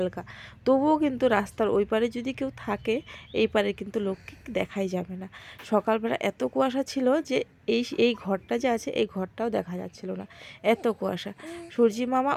তবুও কিন্তু রাস্তার ওই পারে যদি কেউ থাকে, এই পারে কিন্তু লোককে দেখাই যাবে না। সকালবেলা এত কুয়াশা ছিল যে এই ঘরটা যে আছে এই ঘরটাও দেখা যাচ্ছিল না, এত কুয়াশা। সূর্যি মামা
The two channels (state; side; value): identical; both; correlation 1.00